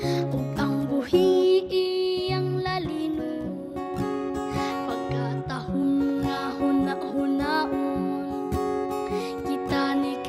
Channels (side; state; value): both; identical; correlation 1.00